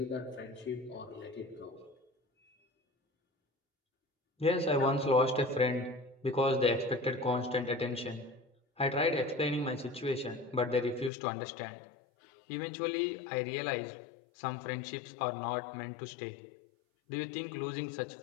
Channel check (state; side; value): drops out; right; at 11.1 s